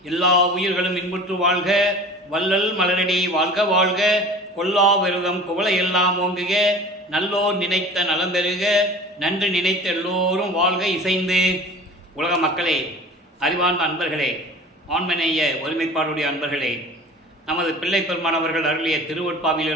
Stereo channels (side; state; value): both; normal; correlation 0.41